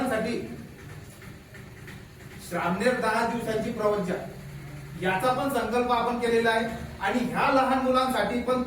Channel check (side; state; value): both; identical; correlation 1.00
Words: श्रामणेर 10 दिवसांची प्रवज्जा याचा पण संकल्प आपण केलेला आहे आणि ह्या लहान मुलांसाठी पण